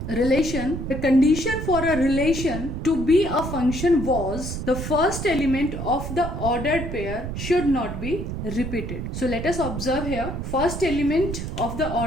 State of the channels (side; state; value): right; noise; rumble, 5 dB below the sound